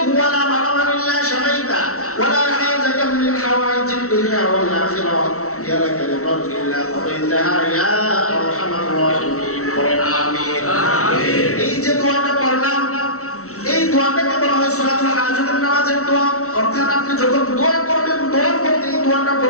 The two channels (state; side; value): late; right; 0.64 ms